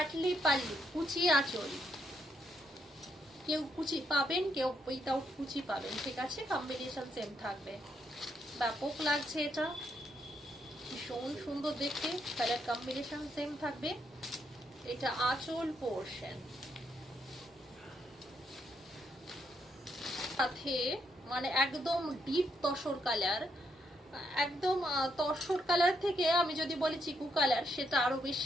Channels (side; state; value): both; normal; correlation 0.77